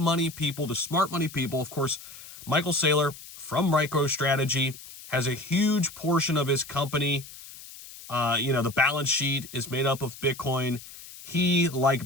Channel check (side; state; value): left; noise; hiss, 16 dB below the sound